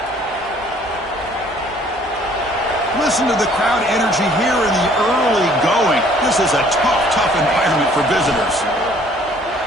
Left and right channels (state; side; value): normal; both; correlation 0.58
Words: Listen to the crowd energy here in the early going. This is a tough environment for visitors.